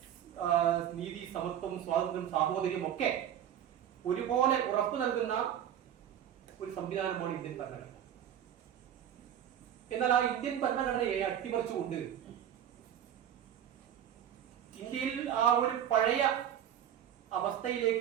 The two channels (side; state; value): left; quieter; 10.1 dB